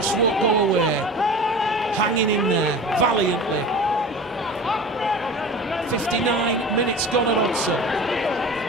won't go away, hanging in there valiantly. 59 minutes gone at Oldham.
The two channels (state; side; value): normal; both; correlation 0.36